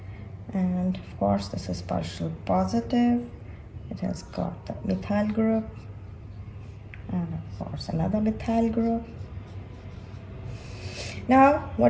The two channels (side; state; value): both; identical; correlation 1.00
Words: and of course this is partial positive. It has got the methyl group and of course another methyl group. Now